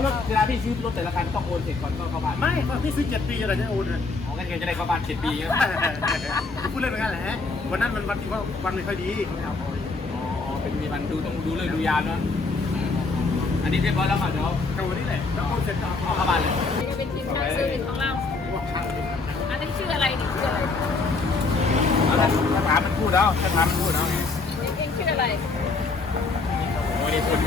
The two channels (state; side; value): quieter; right; 3.9 dB